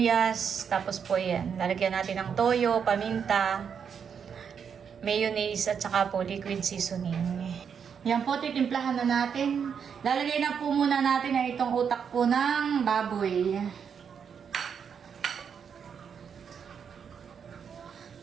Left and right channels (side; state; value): left; quieter; 7.1 dB